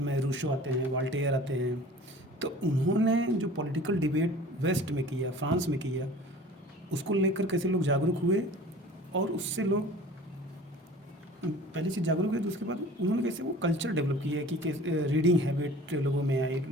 रूसो आते हैं, वॉल्टेयर आते हैं। तो उन्होंने जो पॉलिटिकल डिबेट वेस्ट में किया, फ्रांस में किया, उसको लेकर कैसे लोग जागरूक हुए और उससे लोग पहली चीज़ जागरूक हुए, तो उसके बाद उन्होंने कैसे वो कल्चर डेवलप किया कि कैसे रीडिंग हैबिट लोगों में आई,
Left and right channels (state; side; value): normal; both; correlation 0.44